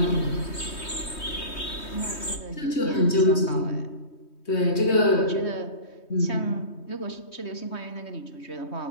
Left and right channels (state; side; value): late; right; 3.2 ms